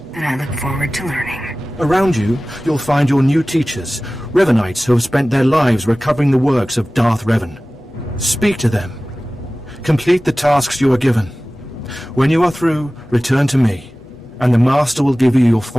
And I look forward to learning. Around you, you'll find your new teachers, Revanites who have spent their lives recovering the works of Darth Revan. Speak to them. Complete the tasks you are given. When you are through, return to me, and the Master will give you your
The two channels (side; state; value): left; noise; hum, 28 dB below the sound